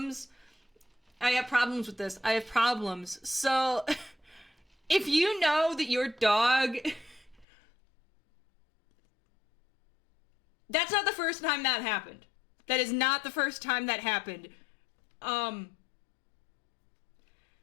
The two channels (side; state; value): right; drops out; at 7.5 s